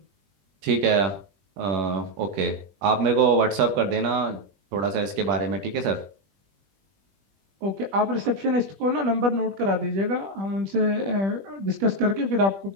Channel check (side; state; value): left; late; 20 ms